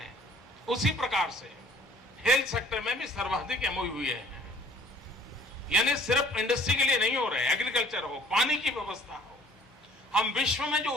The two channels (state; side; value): normal; both; correlation 0.55